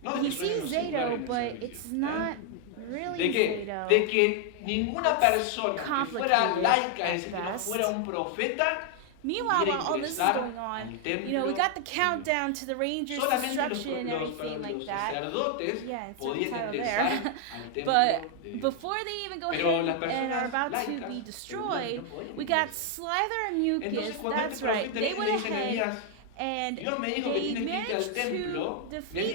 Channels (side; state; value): both; different; correlation 0.00